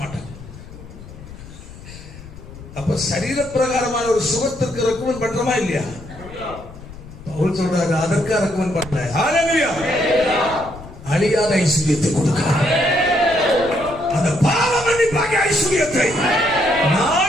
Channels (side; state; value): left; noise; rumble, 16 dB below the sound